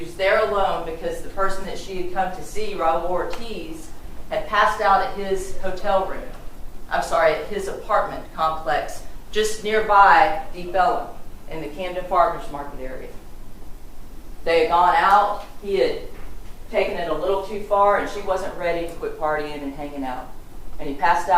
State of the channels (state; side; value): identical; both; correlation 1.00